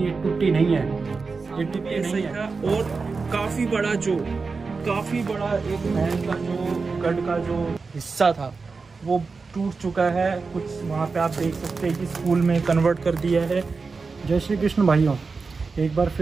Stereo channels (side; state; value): left; quieter; 4.5 dB